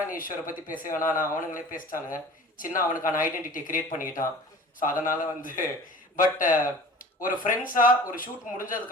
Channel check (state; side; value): normal; both; correlation 0.43